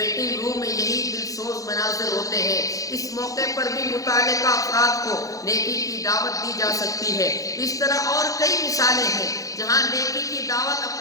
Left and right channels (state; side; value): late; right; 0.17 ms